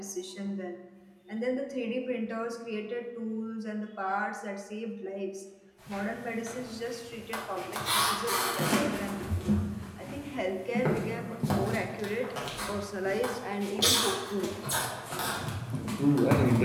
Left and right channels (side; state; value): both; identical; correlation 1.00